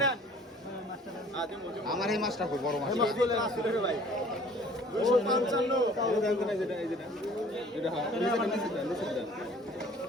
নেন আমার এই মাছটা খুব বড় মাছ। এই মাছ বলে আসছে দেখো ভাই 255 এটা দেন না যেটা এই যেটা এটা হ্যাঁ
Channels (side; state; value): both; normal; correlation 0.52